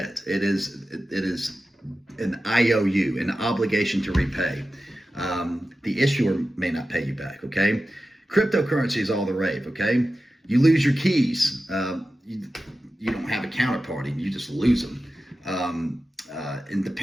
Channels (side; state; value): both; normal; correlation 0.93